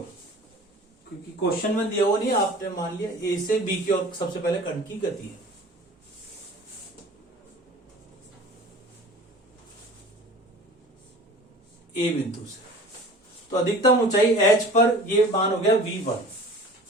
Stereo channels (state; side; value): normal; both; correlation 0.43